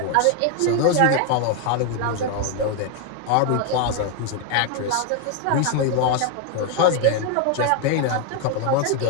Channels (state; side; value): different; both; correlation 0.01